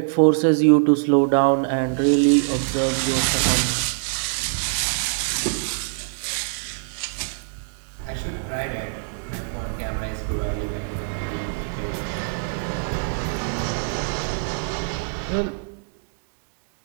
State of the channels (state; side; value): silent; left; digital silence